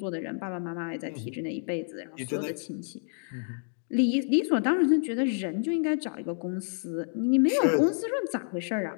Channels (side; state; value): right; silent; digital silence